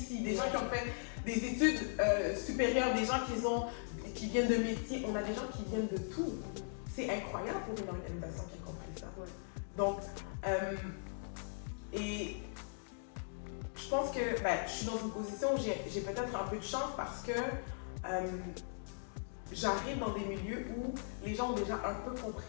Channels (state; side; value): silent; right; digital silence